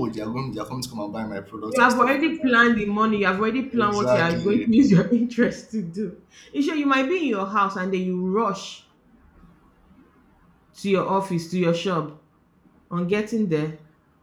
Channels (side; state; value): both; identical; correlation 1.00